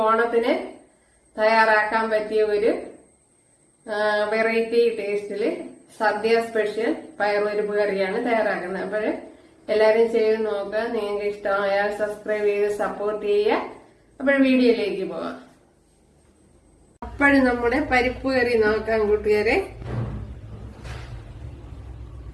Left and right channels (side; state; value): both; identical; correlation 1.00